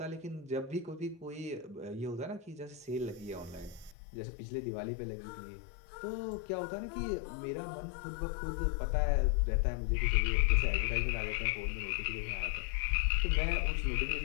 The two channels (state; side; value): drops out; right; at 4.0 s